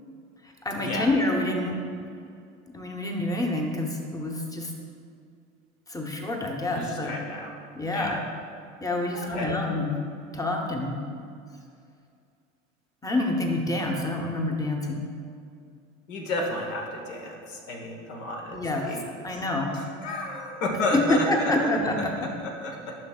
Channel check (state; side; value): normal; both; correlation 0.41